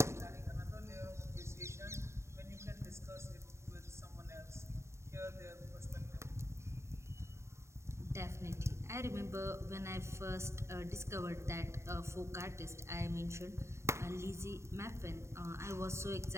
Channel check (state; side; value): late; left; 0.13 ms